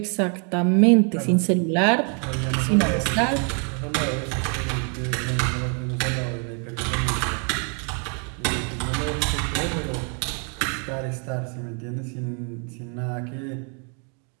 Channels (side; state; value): left; quieter; 39.3 dB